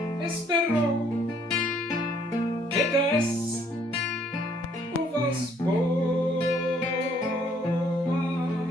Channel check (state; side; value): normal; both; correlation 0.64